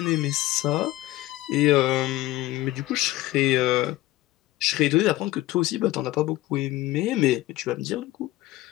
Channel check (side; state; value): right; quieter; 16.8 dB